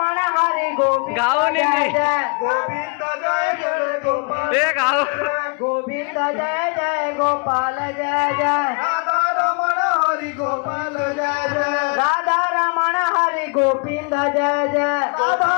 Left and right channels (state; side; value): quieter; right; 37.3 dB